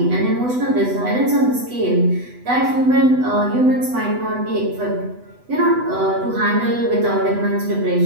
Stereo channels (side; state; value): left; late; 8.0 ms